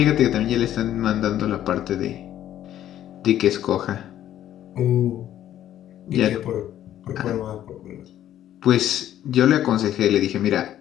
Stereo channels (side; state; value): right; quieter; 11.8 dB